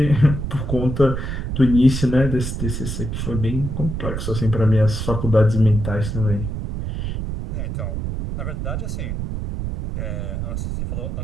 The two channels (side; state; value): right; noise; rumble, 4 dB below the sound